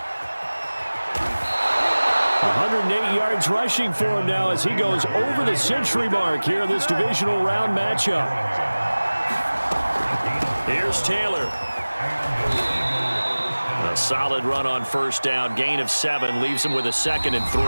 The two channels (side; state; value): both; inverted; correlation -1.00